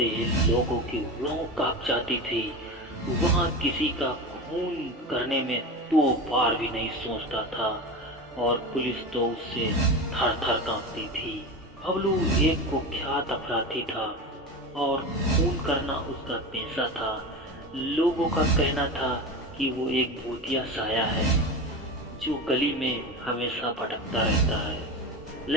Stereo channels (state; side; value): normal; both; correlation 0.25